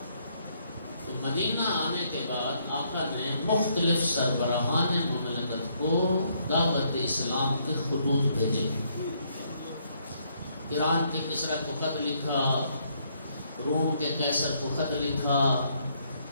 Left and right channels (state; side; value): inverted; both; correlation -0.71